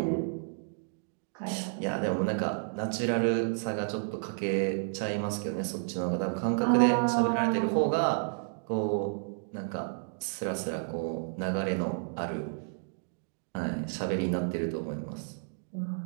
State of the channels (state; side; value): silent; left; digital silence